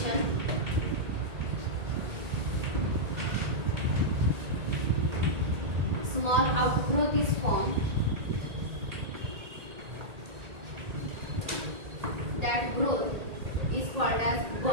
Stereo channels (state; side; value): late; left; 1.8 ms